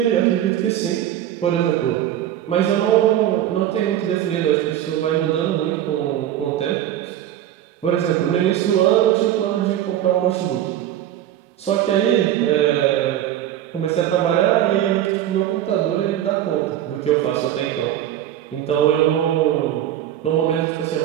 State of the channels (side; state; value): left; quieter; 11.7 dB